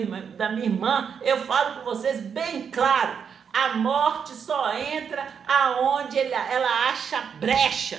da minha irmã, eu falo para vocês bem claro: a morte só entra aonde ela acha brecha.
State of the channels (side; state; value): left; quieter; 7.0 dB